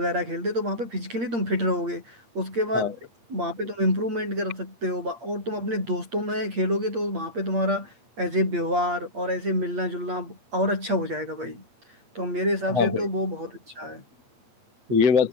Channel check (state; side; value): late; left; 8.6 ms